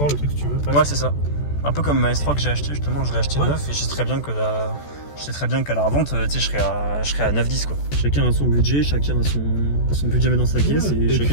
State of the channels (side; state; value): right; late; 14 ms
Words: le truc si tu veux. Ouais, c'est ça. Un peu comme ma S3 que j'ai acheté, justement, je l'ai acheté neuf et je sais très bien qu'à la revente, tu sais, je serais à 9-10, quoi. Chacun a son budget, chacun a son budget dans sa caisse et